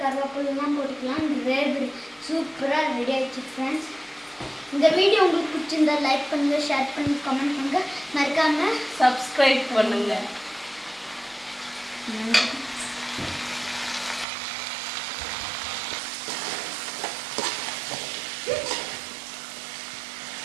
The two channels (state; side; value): drops out; left; at 14.2 s